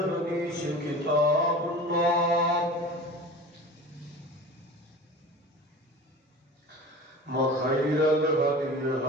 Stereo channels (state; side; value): normal; both; correlation 0.36